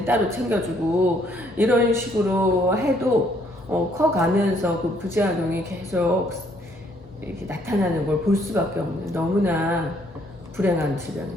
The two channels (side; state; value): both; normal; correlation 0.67